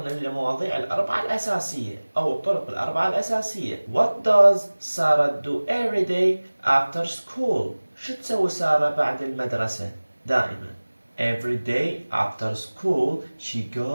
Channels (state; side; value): inverted; both; correlation -1.00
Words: للمواضيع الأربعة الأساسية أو الطرق الأربعة الأساسية. What does Sarah do every day after school؟ شو تسوي سارة بعد المدرسة؟ دائما every day after school she